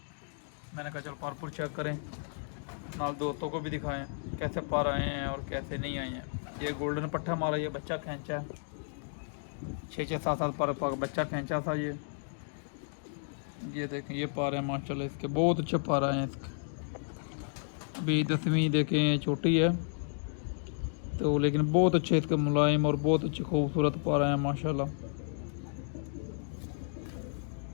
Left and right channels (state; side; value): silent; right; digital silence